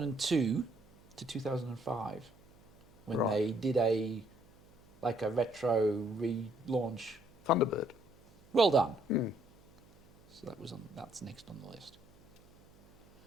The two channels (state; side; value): noise; right; hum, 27 dB below the sound